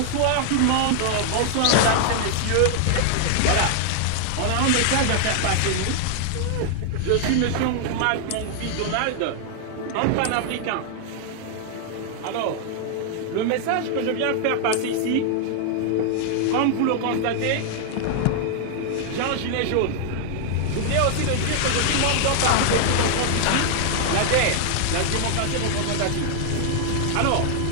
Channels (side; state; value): both; different; correlation 0.00